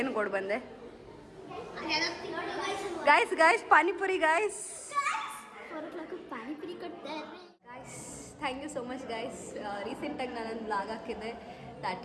ಕೊಡು ಬಂದೆ? Guys panipuri guys. ಪಾನಿಪುರಿ ಕೊಡ್ತಾರೆ guys thank you so much guys. ರೀಸೆಂಟಾಗಿ ನಾನೊಂದು ಬ್ಲಾಗ್ ಹಾಕಿದ್ದೆ that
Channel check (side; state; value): both; identical; correlation 1.00